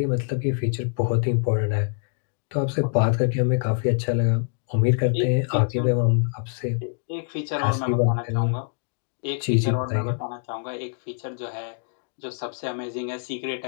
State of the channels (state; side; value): silent; right; 62 dB below the other